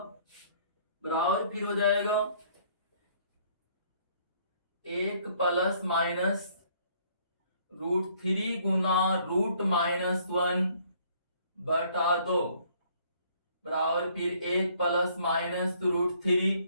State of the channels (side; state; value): both; inverted; correlation -0.62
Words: बराबर फिर हो जाएगा एक प्लस माइनस √3 गुना √-1 बटा 2 बराबर फिर एक प्लस माइनस √3